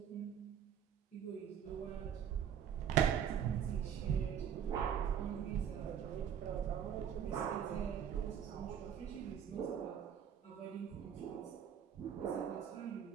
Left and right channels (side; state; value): left; quieter; 8.7 dB